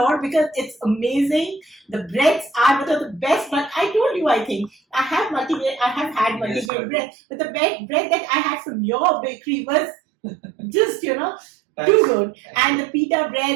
because it's amazing. The breads are the best, but I told you, I think, I have had multi-grain bread, but the bread that I had from your bakery was just, too good. Thanks. And the pita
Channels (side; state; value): left; drops out; at 6.7 s